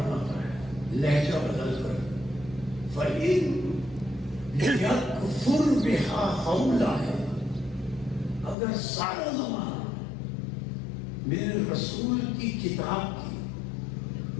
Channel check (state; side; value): drops out; right; at 8.6 s